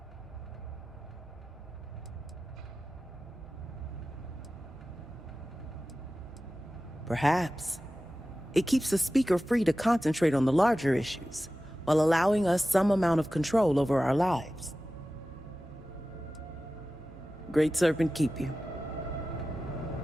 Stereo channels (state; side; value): normal; both; correlation 0.95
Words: Perhaps. It keeps the Speaker free to concentrate on the larger issues, while allowing us some amount of control over our lives. Great Serpent keep you.